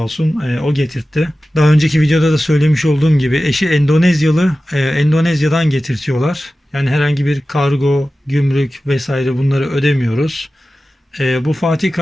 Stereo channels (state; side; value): normal; both; correlation 0.95